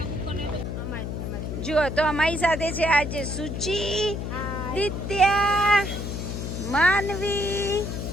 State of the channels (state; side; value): noise; left; hum, 4 dB below the sound